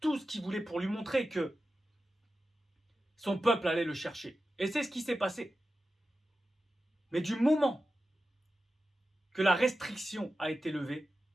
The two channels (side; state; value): both; normal; correlation 0.92